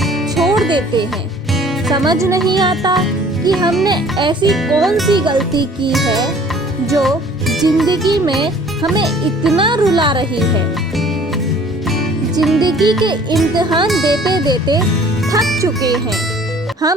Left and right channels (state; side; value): normal; both; correlation 0.52